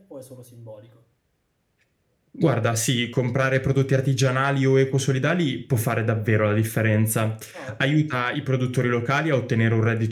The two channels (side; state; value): both; identical; correlation 1.00